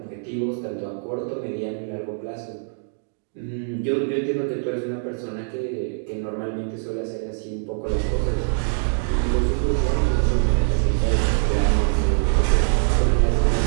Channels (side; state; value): left; silent; digital silence